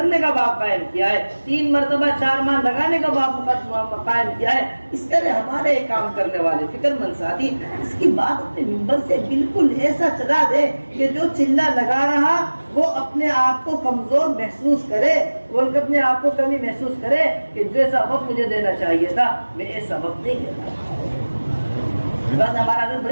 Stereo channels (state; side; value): inverted; both; correlation -1.00